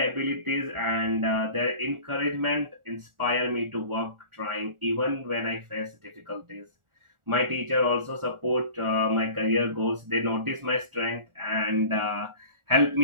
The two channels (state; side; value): late; left; 1.4 ms